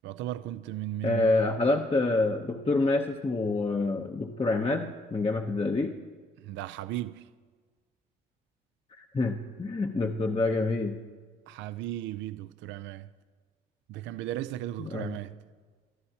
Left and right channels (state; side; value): normal; both; correlation 0.69